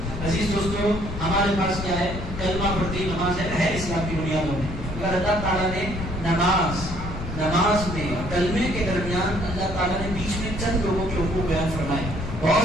عزیز دوستو ہمارے پاس کیا ہے؟ کلمہ پڑھتی نماز ہے اسلام کی بنیادوں میں. اگر اللہ تعالیٰ نے نماز میں اور کلمے کے درمیان اللہ تعالیٰ نے بیچ میں چند لوگوں کے حقوق بیان فرمائے.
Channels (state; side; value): noise; left; rumble, 7 dB below the sound